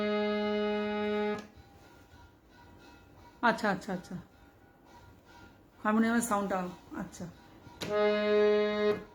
আচ্ছা আচ্ছা আচ্ছা, হারমোনিয়ামের সাউন্ডটা, আচ্ছা।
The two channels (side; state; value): both; identical; correlation 1.00